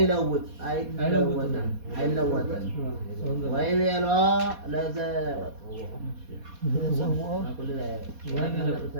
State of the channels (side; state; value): left; late; 4.2 ms